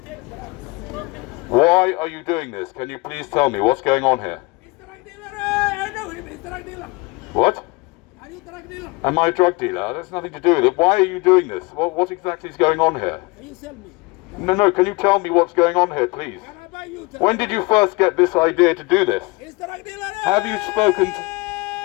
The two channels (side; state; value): right; quieter; 25.5 dB